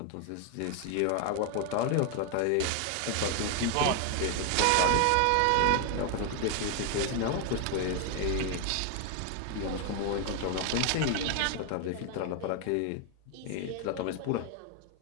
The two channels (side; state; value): both; different; correlation 0.01